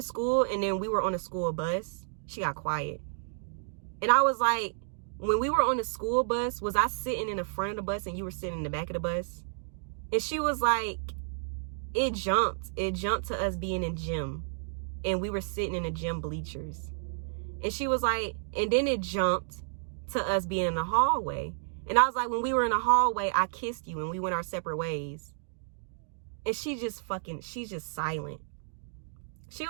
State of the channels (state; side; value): silent; left; digital silence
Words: and then we were on a school bus. She got quiet. And I was like, when we were on the school bus, was I sitting in the front of the bus and you were sitting in the back of the bus? And she was like, it jumped. It jumped to us being in gym. And we were sitting in the gym bleachers. And she was like, and then it jumped to us being in the hallway. And I was like, when we were in the hallway, I kissed you and we went our separate ways. And she's just silent. She